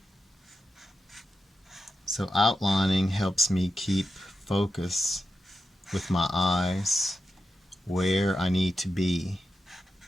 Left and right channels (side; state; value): both; normal; correlation 0.89